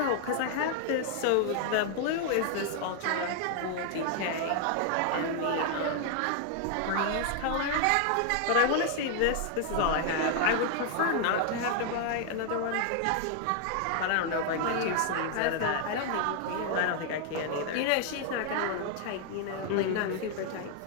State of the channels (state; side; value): different; both; correlation 0.00